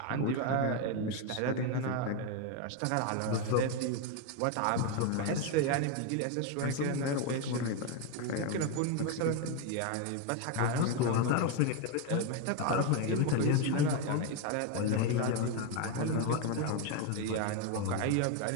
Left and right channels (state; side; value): different; both; correlation 0.02